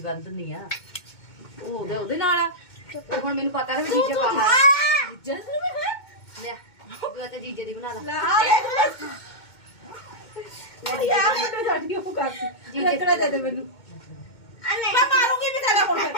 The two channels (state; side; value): late; right; 2.2 ms